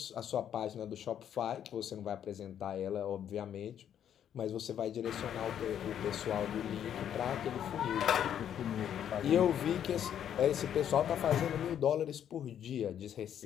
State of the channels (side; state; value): right; quieter; 9.6 dB